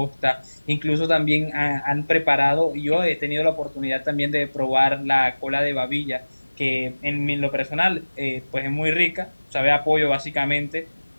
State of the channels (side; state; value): both; inverted; correlation -1.00